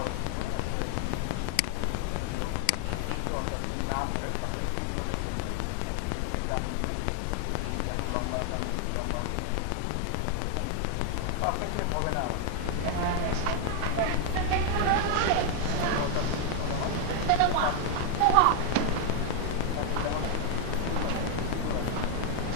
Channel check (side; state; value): both; different; correlation 0.00